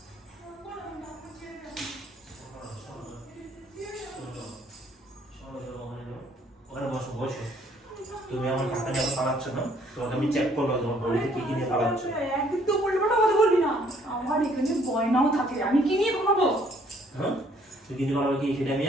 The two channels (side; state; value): both; normal; correlation 0.63